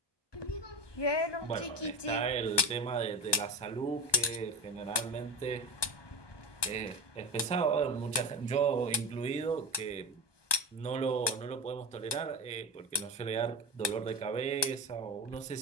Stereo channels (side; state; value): right; late; 1.2 ms